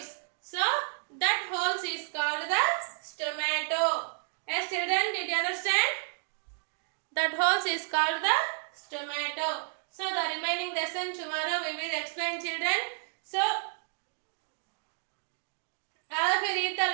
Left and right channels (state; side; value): silent; left; digital silence